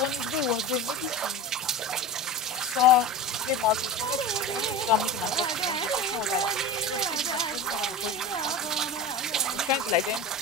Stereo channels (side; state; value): both; normal; correlation 0.28